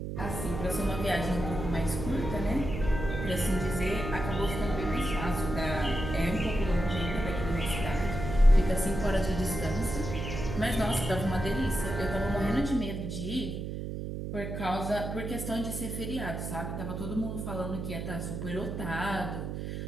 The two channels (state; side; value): noise; right; hum, 5 dB below the sound